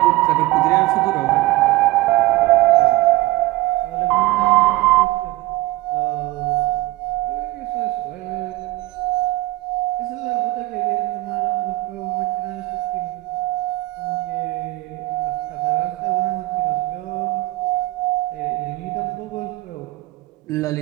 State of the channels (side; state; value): left; quieter; 18.9 dB